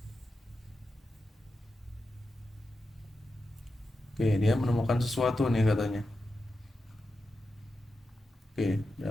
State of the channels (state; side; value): normal; both; correlation 0.90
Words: Oke, dia menemukan sesuatu nih katanya. Oke,